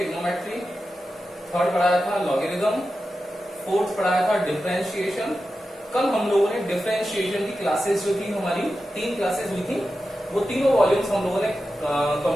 थर्ड पढ़ाया था लॉगरिथम, फोर्थ पढ़ाया था डिफरेंशिएशन. कल हम लोगों ने डिफरेंशिएशन की क्लासेस जो थी हमारी 3 क्लासेस हुई थी, वो तीनों वॉल्यूम्स हम लोगों ने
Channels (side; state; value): both; normal; correlation 0.91